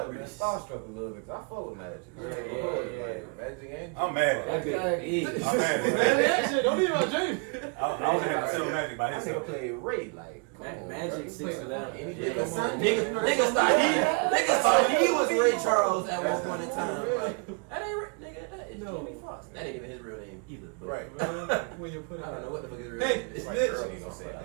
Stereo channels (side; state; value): left; quieter; 34.2 dB